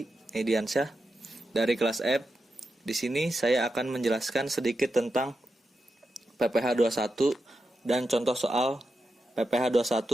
Ediansyah dari kelas F. Di sini saya akan menjelaskan sedikit tentang PPh 21 dan contoh soal PPh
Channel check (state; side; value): normal; both; correlation 0.88